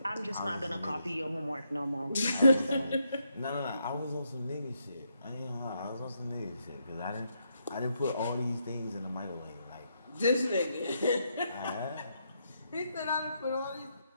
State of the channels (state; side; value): inverted; both; correlation -0.78